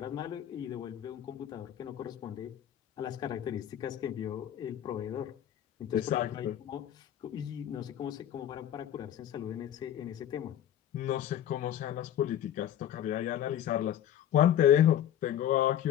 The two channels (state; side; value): quieter; right; 10.9 dB